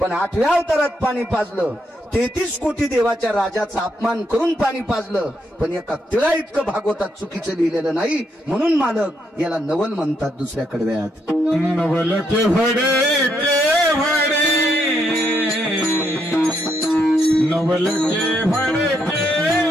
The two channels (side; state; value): both; normal; correlation 0.77